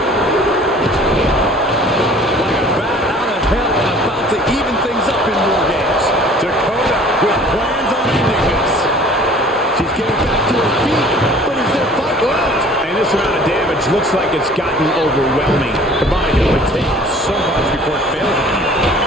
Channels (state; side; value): normal; both; correlation 0.49